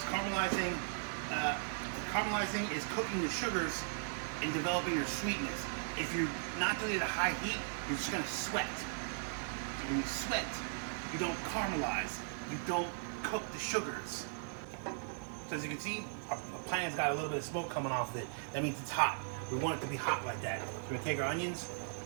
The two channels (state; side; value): silent; left; digital silence